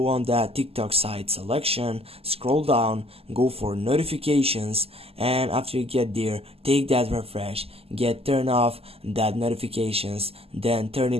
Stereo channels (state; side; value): late; left; 0.29 ms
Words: on that TikTok side selection, scroll down, go for notifications, and after you get there, take that refresh, turn off that notifications, then turn